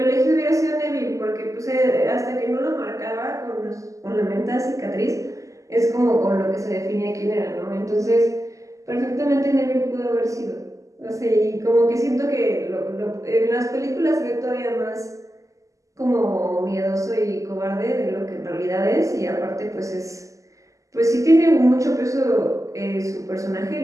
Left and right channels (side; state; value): left; late; 0.16 ms